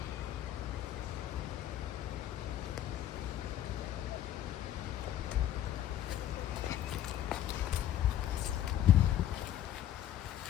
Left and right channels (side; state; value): right; quieter; 11.5 dB